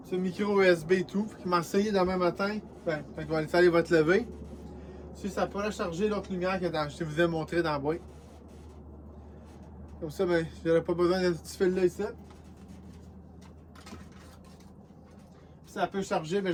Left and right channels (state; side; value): identical; both; correlation 1.00